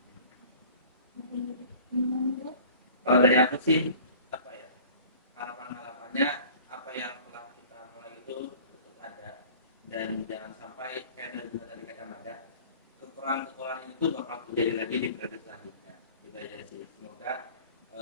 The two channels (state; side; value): inverted; both; correlation -0.46